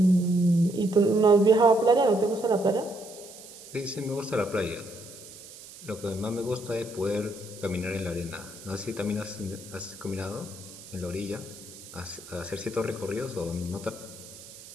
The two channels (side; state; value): right; noise; hiss, 17 dB below the sound